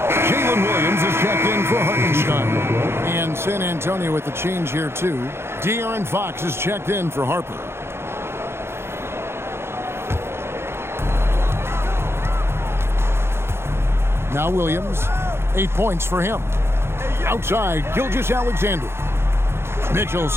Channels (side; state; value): left; late; 0.12 ms